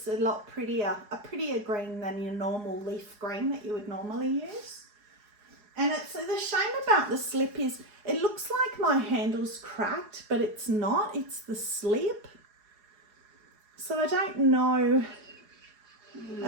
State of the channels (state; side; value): late; left; 4.8 ms